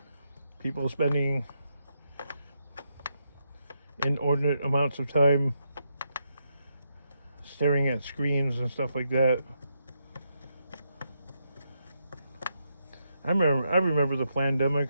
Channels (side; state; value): both; inverted; correlation -0.81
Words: People spending inordinate amounts of time staring at screens and stuff like that. I remember the